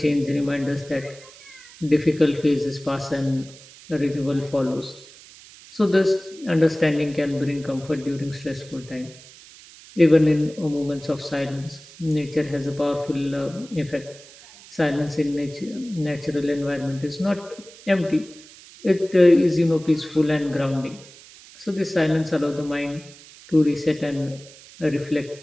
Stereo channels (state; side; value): noise; right; hiss, 21 dB below the sound